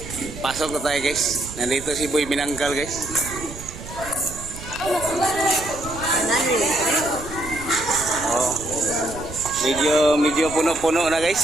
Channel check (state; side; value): noise; right; rumble, 12 dB below the sound